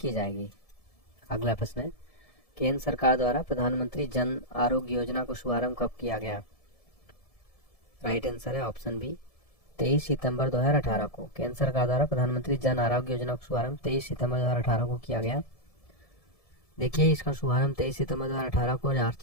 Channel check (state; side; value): late; right; 1.7 ms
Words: जाएगी। अगला प्रश्न है, केंद्र सरकार द्वारा प्रधानमंत्री जन आरोग्य योजना को शुभारंभ कब किया गया? राइट आंसर है ऑप्शन बी 23 सितंबर 2018 को। केंद्र सरकार द्वारा प्रधानमंत्री जन आरोग्य योजना का शुभारंभ 23 सितंबर 2018 को किया गया। देखिए इसका शुभारंभ 23 सितंबर 2018 को